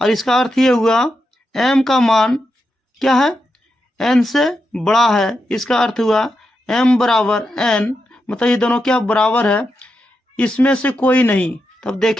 और इसका अर्थ ये हुआ एम का मान क्या है, एन से बड़ा है। इसका अर्थ हुआ एम बराबर एन, मतलब ये दोनों क्या बराबर है, इसमें से कोई नहीं। तब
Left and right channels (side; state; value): both; normal; correlation 0.86